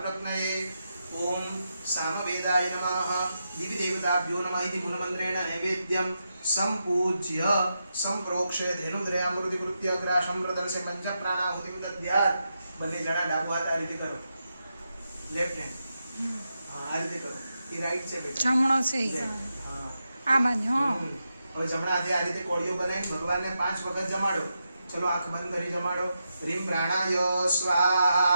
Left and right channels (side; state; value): both; inverted; correlation -0.86